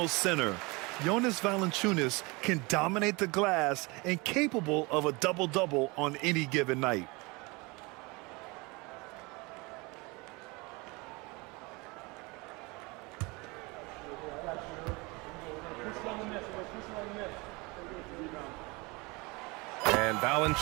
center, Jonas Valanciunas can dominate the glass and capable of a double-double on any given night. And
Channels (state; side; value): quieter; left; 26.0 dB